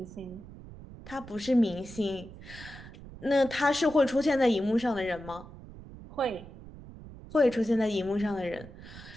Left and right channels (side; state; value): right; noise; rumble, 16 dB below the sound